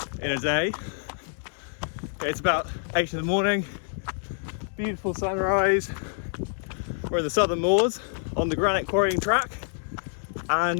in a day. It's about 8 in the morning, beautiful sunrise. We're in the southern moors on the granite quarrying track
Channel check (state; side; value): silent; right; 60 dB below the other